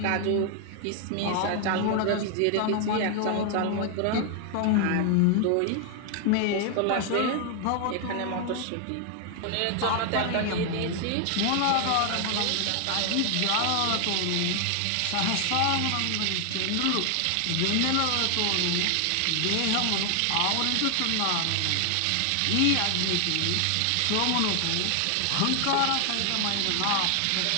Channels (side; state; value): both; different; correlation 0.00